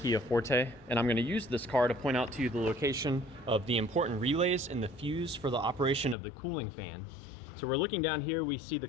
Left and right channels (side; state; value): right; drops out; at 6.2 s